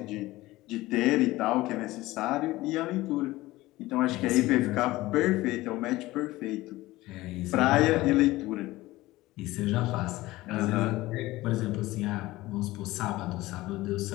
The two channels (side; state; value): right; quieter; 18.3 dB